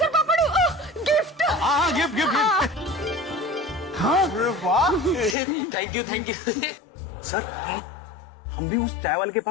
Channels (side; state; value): right; drops out; at 5.4 s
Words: पापड़ गिफ्ट। हाँ, गिफ्ट। हाँ, वाह। Thank you. सर, हम भी उस चाय वाले के